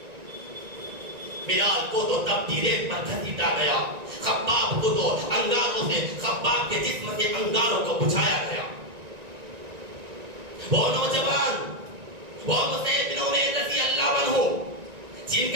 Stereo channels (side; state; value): left; late; 1.9 ms